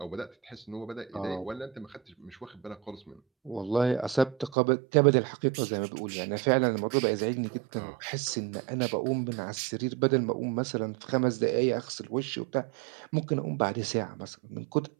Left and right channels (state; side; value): drops out; left; at 4.5 s